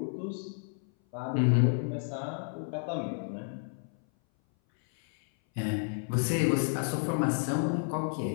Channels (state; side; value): silent; right; 57 dB below the other